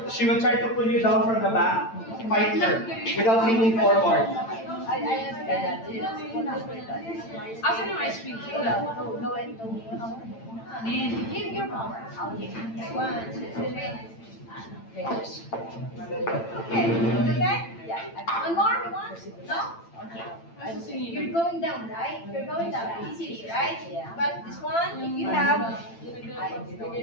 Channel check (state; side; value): late; right; 8.9 ms